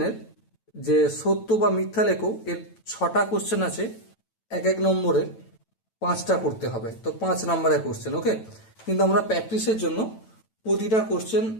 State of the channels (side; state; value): right; late; 9.0 ms